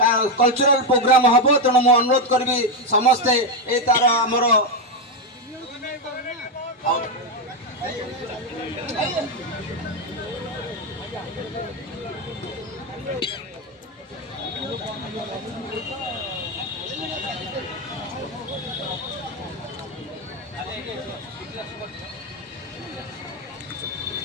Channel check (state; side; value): normal; both; correlation 0.06